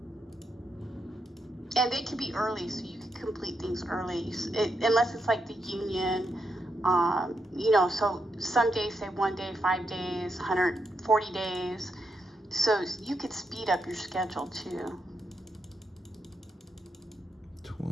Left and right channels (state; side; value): normal; both; correlation 0.82